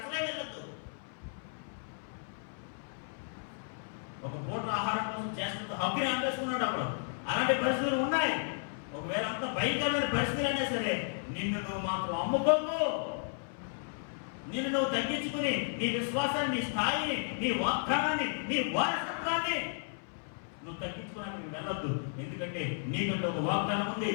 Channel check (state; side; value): silent; right; 55 dB below the other